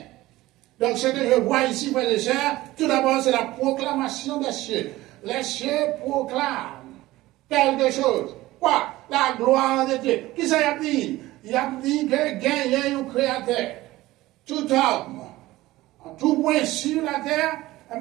Donc, ce que je vois ici, frères et sœurs, tout d'abord, c'est la proclamation des cieux. Les cieux proclament quelque chose. Quoi? La gloire de Dieu. Qui ça y a dit? Il a dit que gagne un créateur. Tout homme, en tout point sur la terre,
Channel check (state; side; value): quieter; left; 17.6 dB